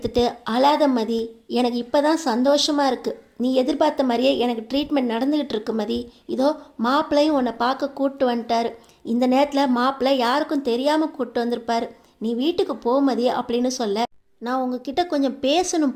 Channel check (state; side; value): identical; both; correlation 1.00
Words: அழாத மதி, எனக்கு இப்போ தான் சந்தோஷமாக இருக்குது, நீ எதிர்பார்த்த மாதிரியே எனக்கு ட்ரீட்மெண்ட் நடந்துக்கிட்டு இருக்கு மதி, இதோ மாப்பிள்ளையும் உன்னை பார்க்க கூப்பிட்டு வந்துட்டாரு, இந்த நேரத்தில் மாப்பிள்ளை யாருக்கும் தெரியாமல் கூப்பிட்டு வந்திருப்பார், நீ வீட்டுக்கு போமதி அப்படின்னு சொல்ல நான் உங்ககிட்ட கொஞ்சம்